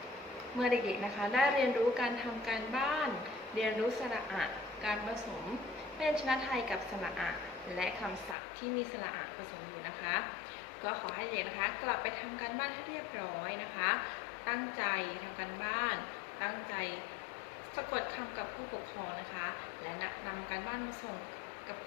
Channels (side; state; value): right; drops out; at 8.3 s